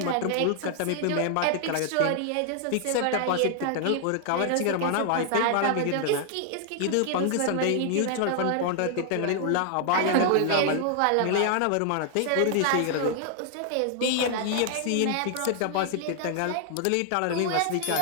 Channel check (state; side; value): different; both; correlation 0.00